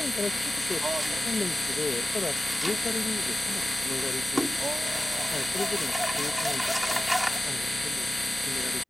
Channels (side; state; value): both; normal; correlation 0.94